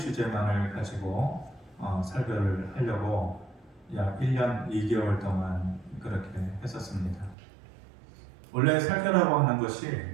가지고 설교를 하려고 약 1년 2개월 동안 그렇게 했었습니다. 원래 설교라고 하는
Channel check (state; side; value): drops out; left; at 7.4 s